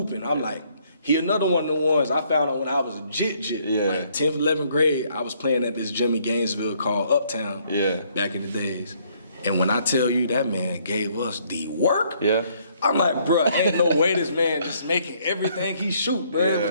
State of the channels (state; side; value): inverted; both; correlation -0.67